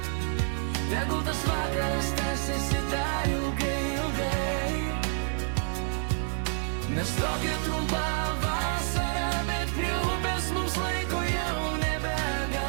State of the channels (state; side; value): silent; left; digital silence